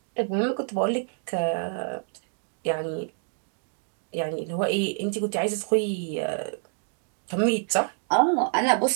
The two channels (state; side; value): silent; left; 60 dB below the other